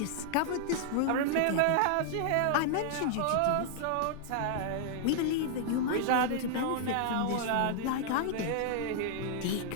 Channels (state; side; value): different; both; correlation -0.01